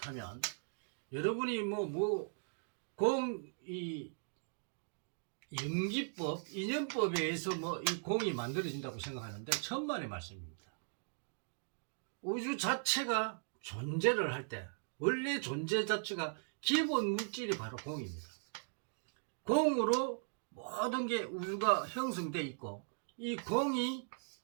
여러분이 이 연기법, 인연법에 의해서 이 공이 만들어진다고 생각하는데 천만의 말씀입니다. 우주 자체가 존재를 할 때 원래 존재 자체가 기본 물질이 바로 공입니다. 공으로 모든 게 우주가 형성되어 있고, 이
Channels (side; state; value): left; silent; digital silence